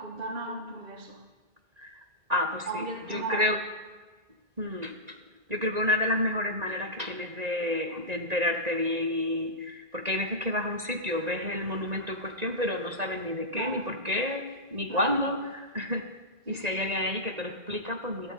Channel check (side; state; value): left; late; 1.9 ms